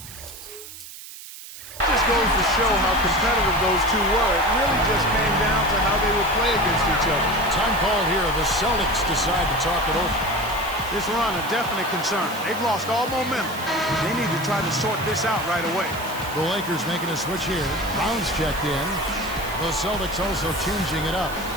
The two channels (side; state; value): right; noise; hiss, 14 dB below the sound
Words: just goes to show how competitive those two were. It really just came down to how they would play against each other. Time call here. The Celtics decide to talk it over. This run a definite concern. They've lost all momentum. They need to try to sort this out right away. The Lakers making a switch here. Brown's checked in. The Celtics also changing it up.